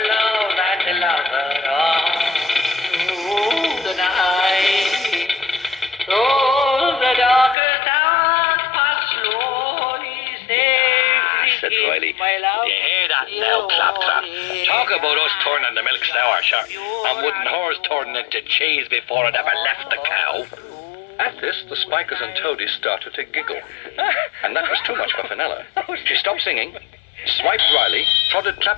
love and the lover all through the night. Oh, the darkest hours pass slowly, said Riley. my love. You hear that now, Claptrap? Talk about us turning the milk sour, sure. And wouldn't hers turn into cheese before it ever left the cow? At this, the Spikers and Toadies started to giggle. And that was too much for Fenella. She stopped singing, swiped Riley, prodded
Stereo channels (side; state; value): right; drops out; at 7.6 s